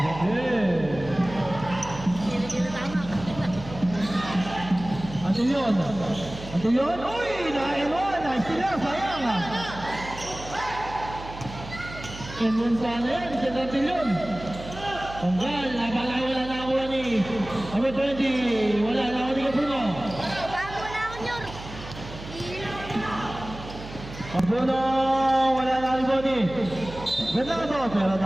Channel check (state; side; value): noise; right; hum, 13 dB below the sound